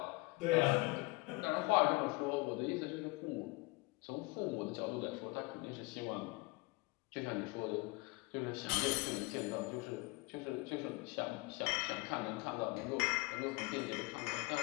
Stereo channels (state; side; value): quieter; right; 23.5 dB